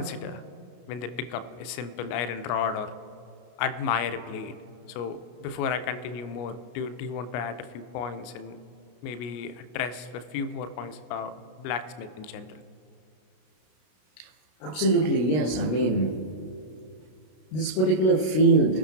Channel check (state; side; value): late; right; 33 ms